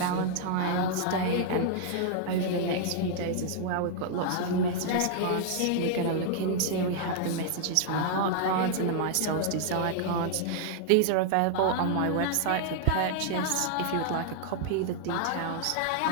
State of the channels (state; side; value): different; both; correlation -0.01